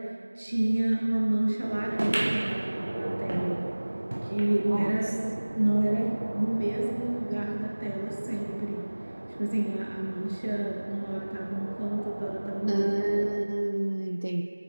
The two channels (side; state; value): both; inverted; correlation -1.00